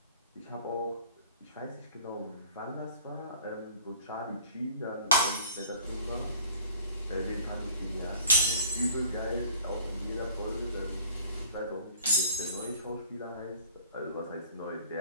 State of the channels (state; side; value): inverted; both; correlation -0.49